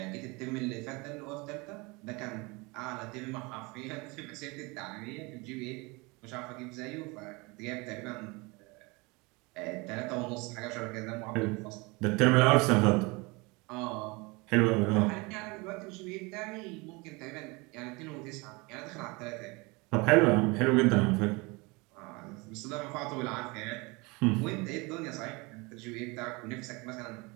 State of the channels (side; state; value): left; quieter; 26.3 dB